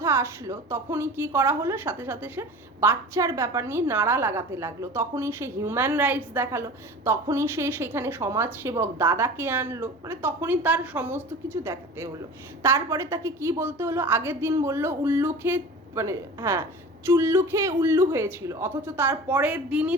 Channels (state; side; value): normal; both; correlation 0.37